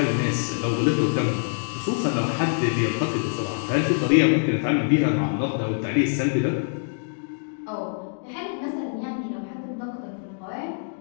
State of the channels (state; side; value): silent; right; digital silence